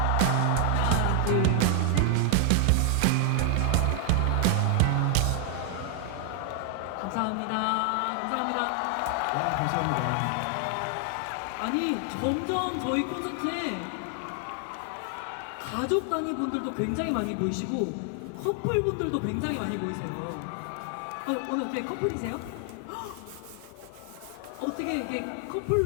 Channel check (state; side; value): different; both; correlation 0.00